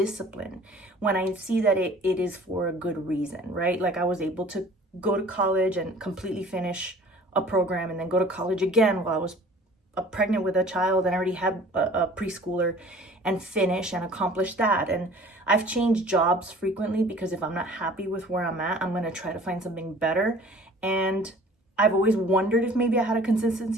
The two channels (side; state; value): both; normal; correlation 0.49